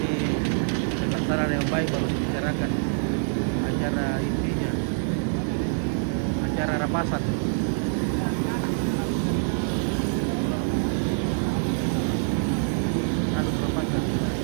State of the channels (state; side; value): silent; left; 57 dB below the other